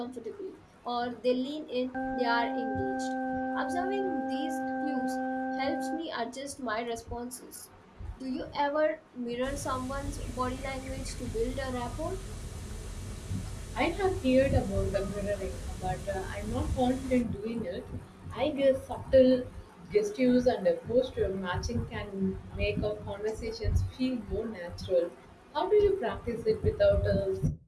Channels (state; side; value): identical; both; correlation 1.00